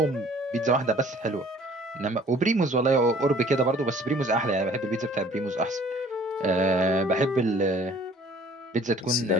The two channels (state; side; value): normal; both; correlation 0.54